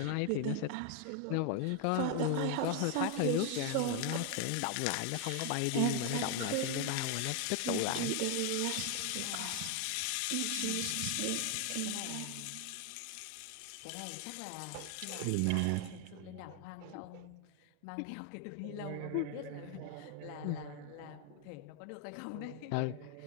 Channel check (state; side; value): different; both; correlation 0.00